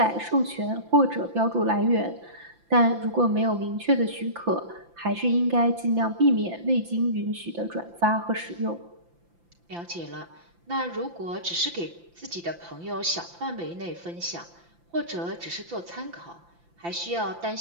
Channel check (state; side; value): late; left; 5.9 ms